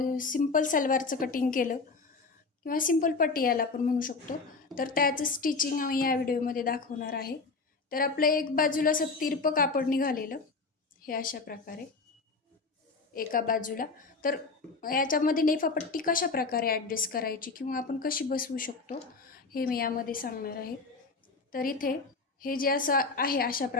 सिंपल सलवारचं कटिंग केलं किंवा सिंपल पट्टी याला आपण म्हणू शकतो, तर त्याचं स्टिचिंग आम्ही या व्हिडिओमध्ये दाखवणार आहे. तर आपल्या एक बाजूला असं तिरपं कापड निघालेलं, हे अशा प्रकारे एका बाजूला. तर याच्यामध्ये नेफापट्टी कशा प्रकारे ॲडजस्ट करायची किंवा आपण कशी बसवू शकतो हे मी यामध्ये सांगणार आहे. तर इथे हे जे असं आहे अशा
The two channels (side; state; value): right; quieter; 4.1 dB